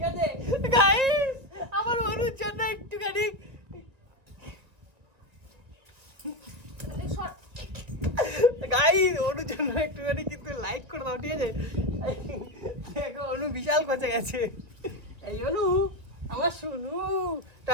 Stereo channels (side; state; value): left; late; 2.0 ms